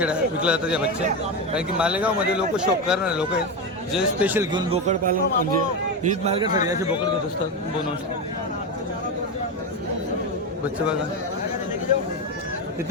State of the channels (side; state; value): both; normal; correlation 0.15